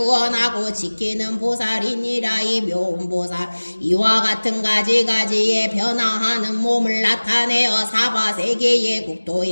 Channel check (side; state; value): both; inverted; correlation -1.00